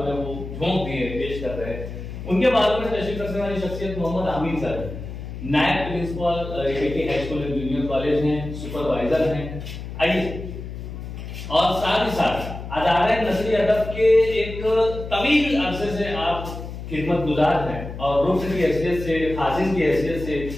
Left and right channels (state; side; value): noise; left; hum, 9 dB below the sound